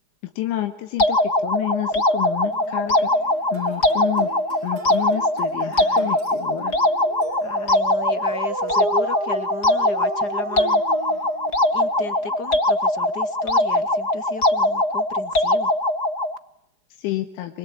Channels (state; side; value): late; right; 4.9 ms